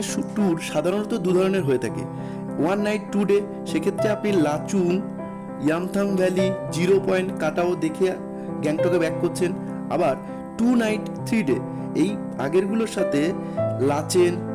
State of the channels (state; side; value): identical; both; correlation 1.00